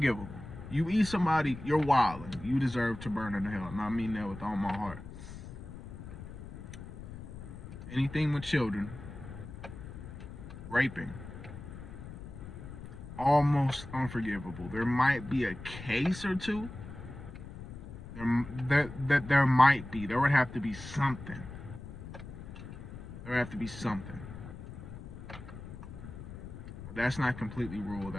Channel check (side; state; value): left; noise; rumble, 12 dB below the sound